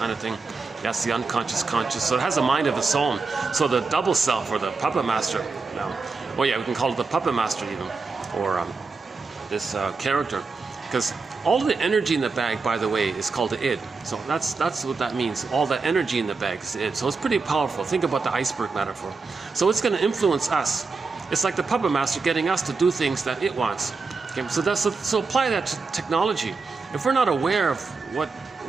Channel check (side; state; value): left; quieter; 4.3 dB